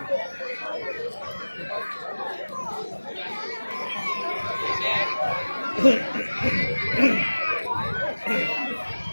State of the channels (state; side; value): inverted; both; correlation -1.00